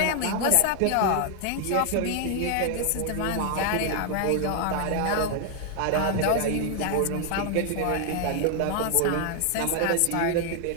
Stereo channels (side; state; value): both; different; correlation 0.00